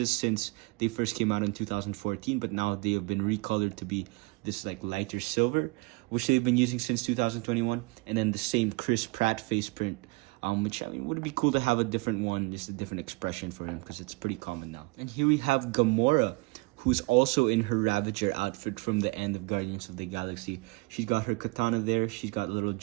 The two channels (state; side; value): quieter; left; 26.4 dB